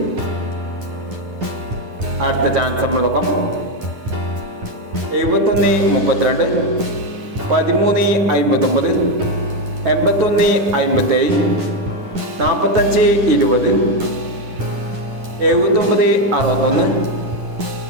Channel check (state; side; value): late; left; 9.9 ms